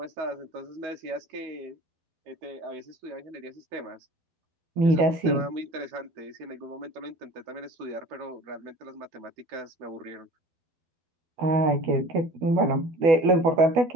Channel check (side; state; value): left; late; 12 ms